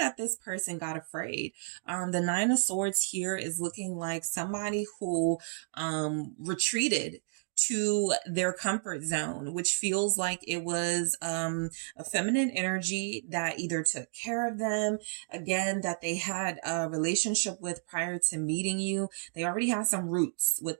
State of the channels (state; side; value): silent; left; digital silence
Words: this person got afraid. The Nine of Swords here is looking like somebody who retreated to their comfort zone, which feels like it was a feminine energy that either took care of them, again, that they had a relationship with prior to meeting you. They already have some roots with